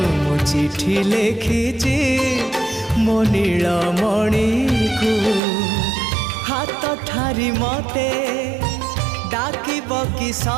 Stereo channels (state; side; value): drops out; left; at 5.4 s